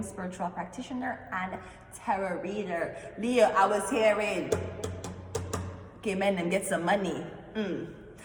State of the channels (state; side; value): identical; both; correlation 1.00